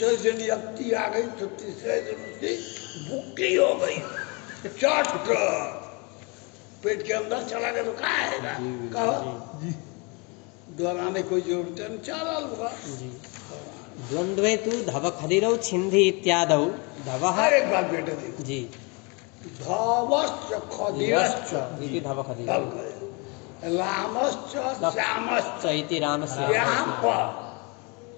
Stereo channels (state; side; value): quieter; right; 30.5 dB